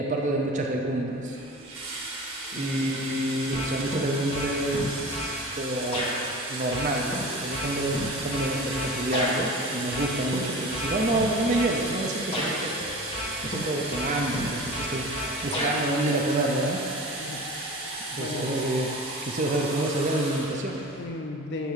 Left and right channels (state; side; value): normal; both; correlation 0.35